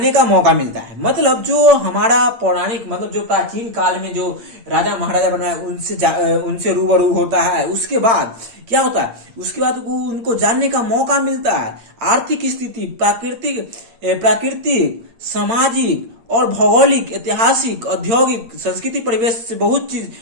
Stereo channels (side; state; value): left; late; 8.7 ms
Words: का मौका मिलता है। मतलब जो हमारा पौराणिक, मतलब जो प्राचीन काल में जो राजा महाराजा बनाए, उनसे रूबरू होता है। उसके बाद क्या होता है, उसके बाद उनको जानने का मौका मिलता है। आर्थिक स्थिति, प्राकृतिक, सामाजिक और भौगोलिक, ऐतिहासिक, औद्योगिक, संस्कृति परिवेश से बहुत चीज